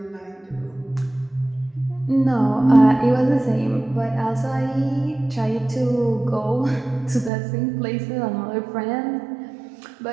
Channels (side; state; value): left; drops out; at 7.3 s